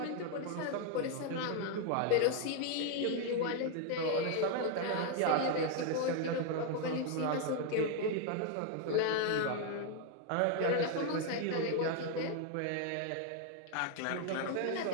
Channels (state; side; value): different; both; correlation 0.01